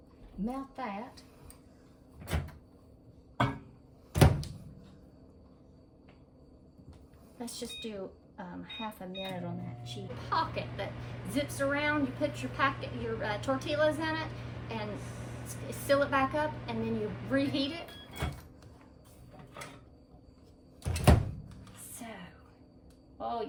melt that. Let's just do half a minute on that cheap pocket that zips around. You put your tortillas in it and seal it back up, and then you reheat it. So, oh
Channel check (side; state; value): both; identical; correlation 1.00